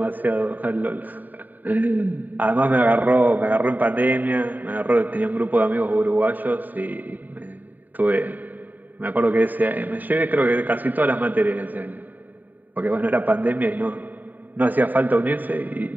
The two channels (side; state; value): left; late; 0.086 ms